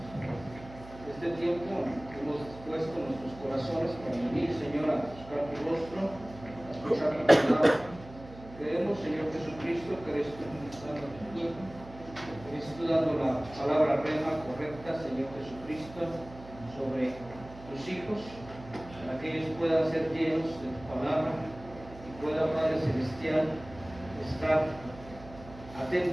este tiempo que hemos puesto en nuestros corazones para venir, Señor, a buscar tu rostro, a escuchar tu palabra. Creemos, Señor Jesucristo, que eres tú ministrando a tu pueblo, que eres tú dando la palabra rema correcta, Señor Jesucristo, sobre tus hijos, para que ellos puedan ser llenos de tu palabra y puedan, Padre Celestial, estar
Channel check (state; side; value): noise; right; hum, 17 dB below the sound